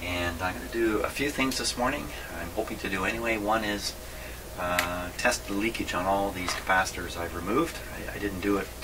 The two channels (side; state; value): both; identical; correlation 1.00